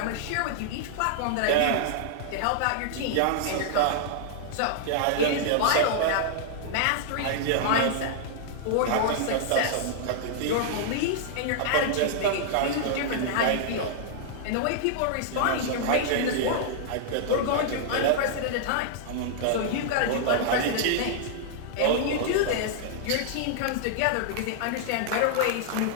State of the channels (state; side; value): different; both; correlation -0.01